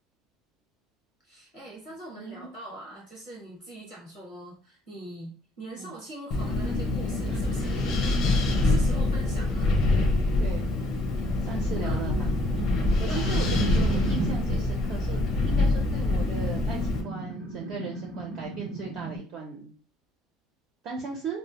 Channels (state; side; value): normal; both; correlation 0.66